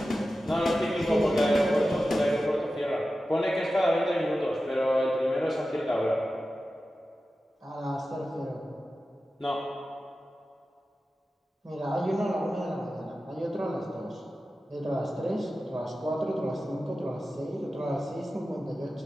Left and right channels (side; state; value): both; normal; correlation 0.93